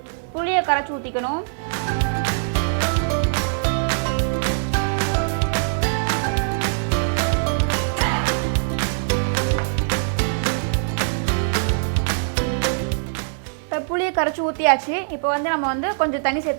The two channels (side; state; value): left; silent; 64 dB below the other